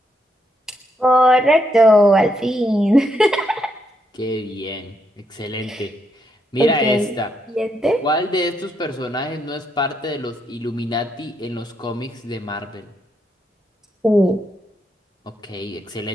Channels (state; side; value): normal; both; correlation 0.77